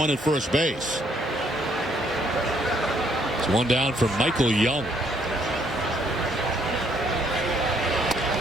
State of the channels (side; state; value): both; normal; correlation 0.68